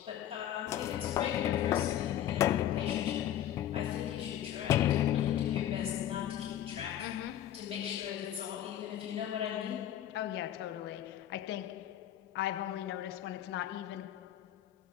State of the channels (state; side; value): quieter; right; 11.4 dB